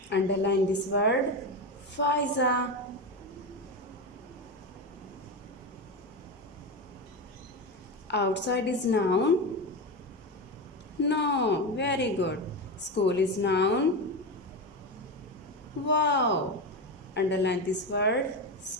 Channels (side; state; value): both; normal; correlation 0.17